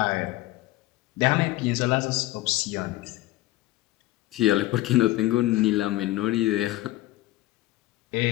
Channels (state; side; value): quieter; right; 17.4 dB